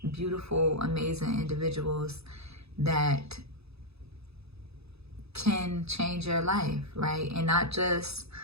beautiful, amazing individuals that can change your life, right? And not just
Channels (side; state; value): left; late; 0.79 ms